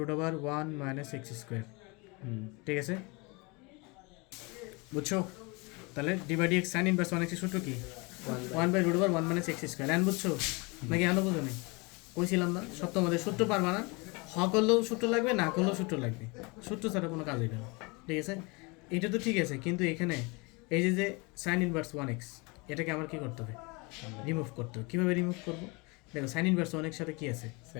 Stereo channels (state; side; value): quieter; right; 28.1 dB